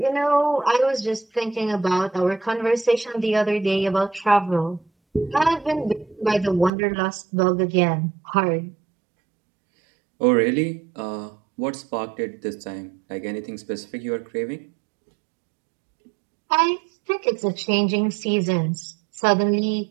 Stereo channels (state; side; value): drops out; left; at 6.7 s